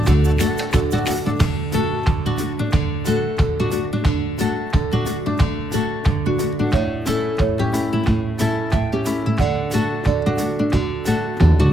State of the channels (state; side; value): normal; both; correlation 0.79